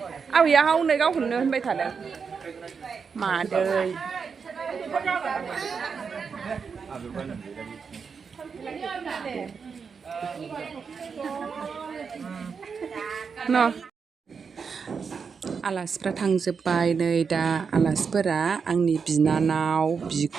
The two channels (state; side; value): quieter; left; 5.8 dB